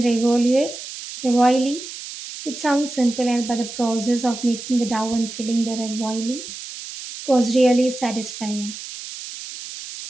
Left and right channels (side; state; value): right; noise; hiss, 11 dB below the sound